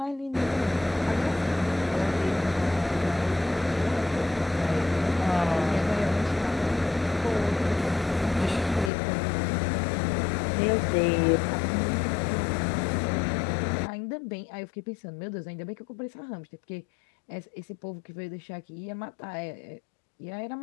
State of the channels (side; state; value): right; drops out; at 8.9 s